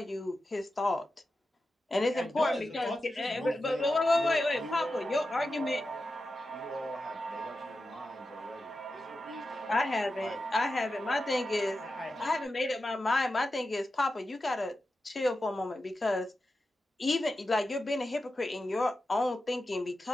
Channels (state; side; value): normal; both; correlation 0.91